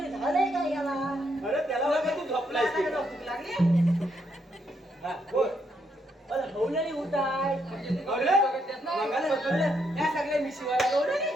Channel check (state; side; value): normal; both; correlation 0.76